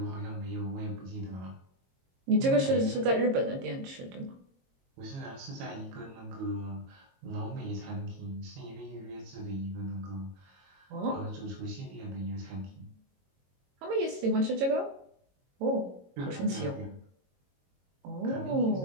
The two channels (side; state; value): left; late; 22 ms